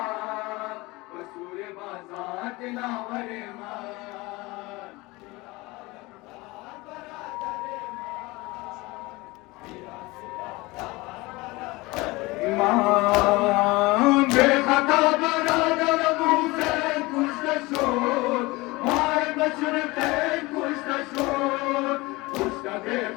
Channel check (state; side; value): quieter; right; 22.4 dB